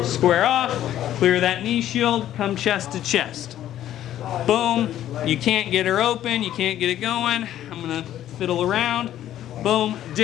square off, clear that knee shield, come chest to chest. Boom, you can't get her open, you can't get it going. I'm gonna fiddle around. Boom,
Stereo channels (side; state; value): right; quieter; 12.1 dB